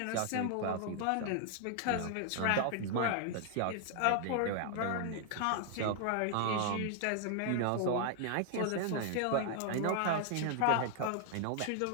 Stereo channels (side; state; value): both; different; correlation 0.00